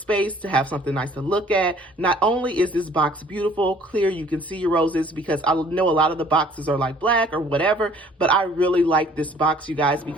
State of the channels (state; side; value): normal; both; correlation 0.55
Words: to have something nice to look at. Not only is this box beautiful, clear, you can see your roses, because I know a lot of the boxes are like black or whatever, but I really like this box, you guys,